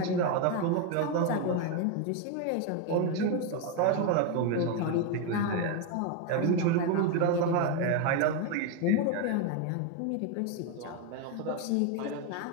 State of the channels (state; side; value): different; both; correlation 0.02